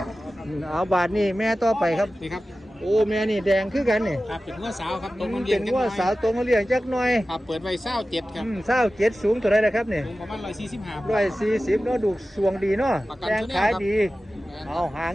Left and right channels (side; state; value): both; normal; correlation 0.95